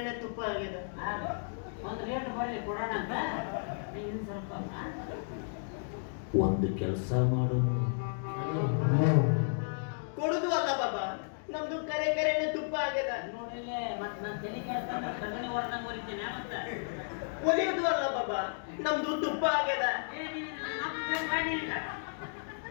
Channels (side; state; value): right; silent; digital silence